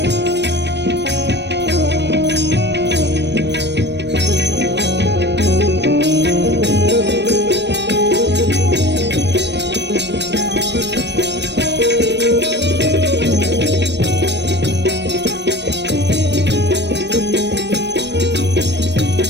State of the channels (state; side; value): late; left; 0.50 ms